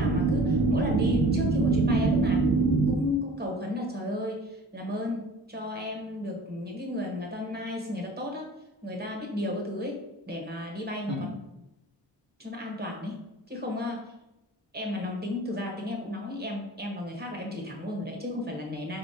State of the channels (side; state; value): both; normal; correlation 0.45